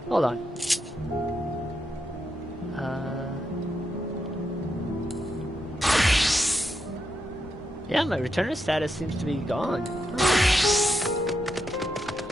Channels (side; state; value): both; normal; correlation 0.83